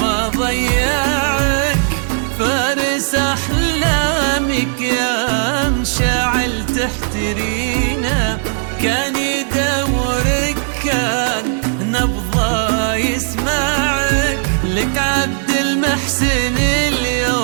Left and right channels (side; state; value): left; silent; 64 dB below the other